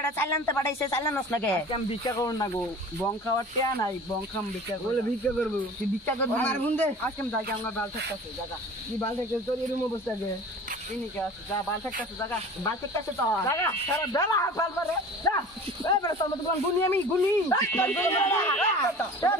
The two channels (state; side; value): normal; both; correlation 0.41